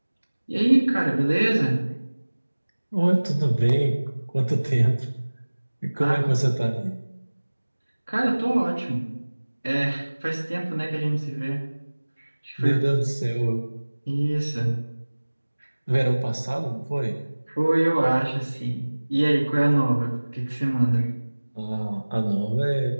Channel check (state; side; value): inverted; both; correlation -1.00